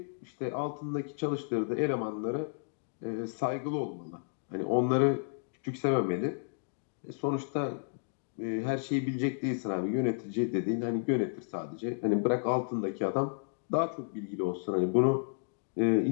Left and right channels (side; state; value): right; silent; digital silence